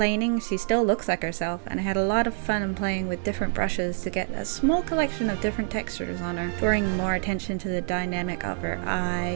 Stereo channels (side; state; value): left; silent; 61 dB below the other